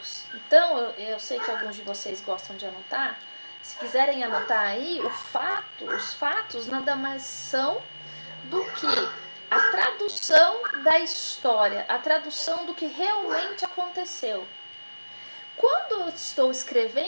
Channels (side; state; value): both; inverted; correlation -1.00